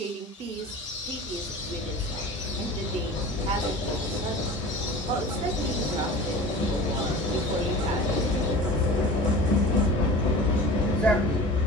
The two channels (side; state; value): both; normal; correlation 0.38